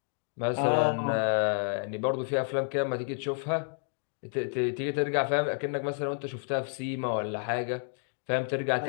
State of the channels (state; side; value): silent; right; 58 dB below the other